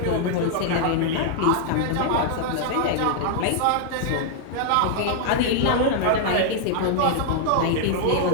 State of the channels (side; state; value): both; different; correlation -0.01